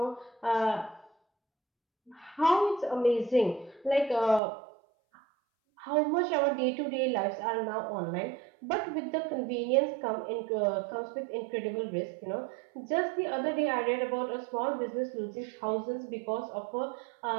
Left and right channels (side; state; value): left; drops out; at 4.4 s